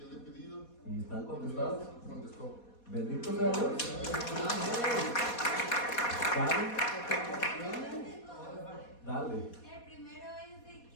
le he pedido. ¿Y están y me contestadas? las contestó. Bendito sea Dios. Dale. El primero es de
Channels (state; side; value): late; right; 4.2 ms